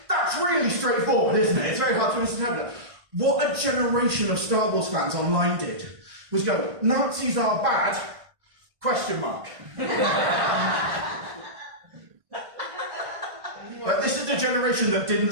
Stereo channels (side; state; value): left; late; 1.5 ms